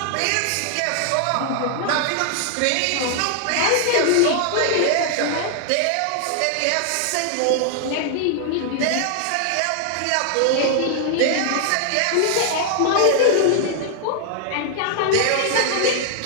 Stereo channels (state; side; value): different; both; correlation 0.00